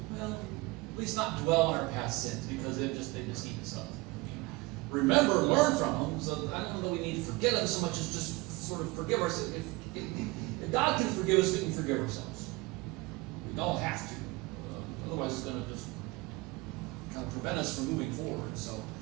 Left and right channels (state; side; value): quieter; left; 22.6 dB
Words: Well, at least not dwell on our past sins because they just eat us up. Remember, learn from them. So I don't know we need to forget them so much as just sort of forgive ourselves. If God can forgive us, we can forgive ourselves. We don't have to. Otherwise, it's going to just kind of prevent us from moving forward. So